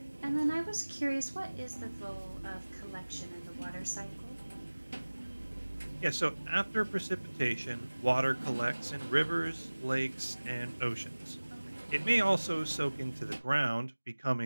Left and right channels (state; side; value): inverted; both; correlation -1.00